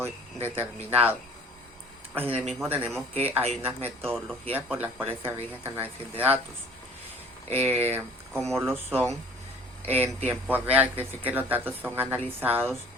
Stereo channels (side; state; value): both; normal; correlation 0.49